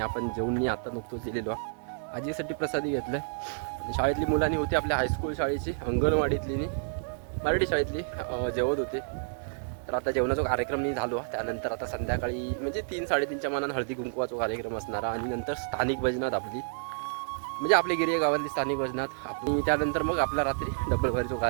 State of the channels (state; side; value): silent; left; digital silence